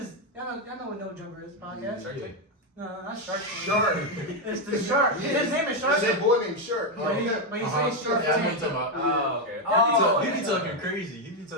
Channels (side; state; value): both; normal; correlation 0.05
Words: y'all know what No Jumper is podcast. Shark Yeah. Tank? No, not Shark Tank. Shark. It's the Shark. Yeah. His name is Shark. That's that boy named Shark. But he Uh-huh. says Shark Yeah, I know what Tank. you're talking about. Oh, okay. Oh, He be yeah. talking crazy. You